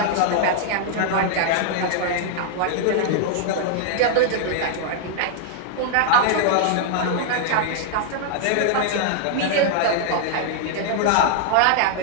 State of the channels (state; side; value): different; both; correlation -0.01